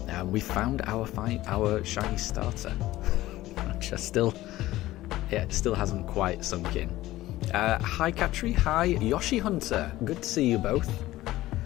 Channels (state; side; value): quieter; right; 16.3 dB